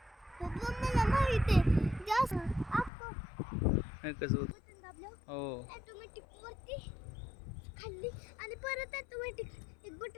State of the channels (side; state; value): right; drops out; at 2.9 s